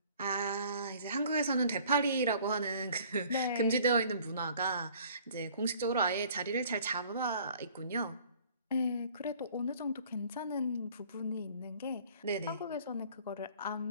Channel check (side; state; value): both; inverted; correlation -0.54